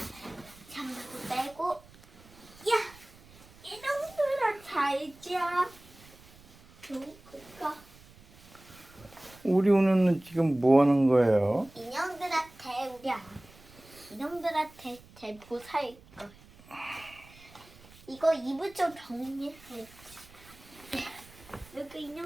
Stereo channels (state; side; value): noise; right; rumble, 24 dB below the sound